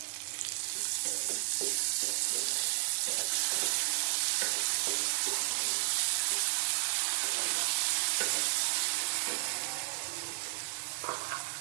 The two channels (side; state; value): left; silent; digital silence